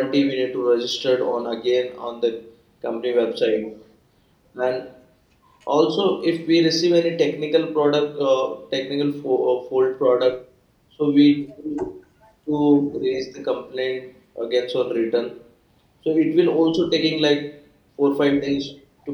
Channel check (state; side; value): identical; both; correlation 1.00